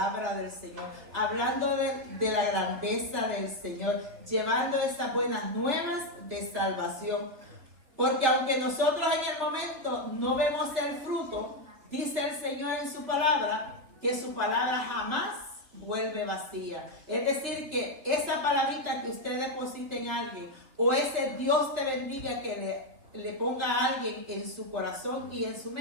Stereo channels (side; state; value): left; late; 3.3 ms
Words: del Señor, hablando de la grandeza del Señor, llevando esas buenas nuevas de salvación. Porque aunque nosotros en el momento no vemos el fruto, dice el Señor en su palabra, que su palabra jamás vuelve vacía. Es decir, que esa palabrita que usted deposite en alguien, o ese Dios te bendiga que le ponga a alguien en su corazón y en su